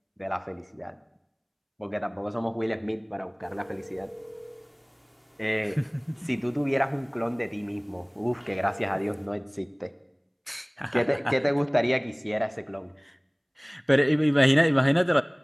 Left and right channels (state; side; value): identical; both; correlation 1.00